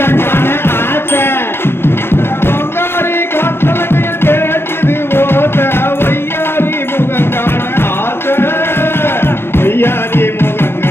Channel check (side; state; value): right; late; 0.11 ms